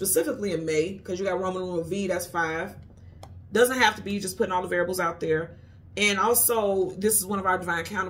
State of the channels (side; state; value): both; identical; correlation 1.00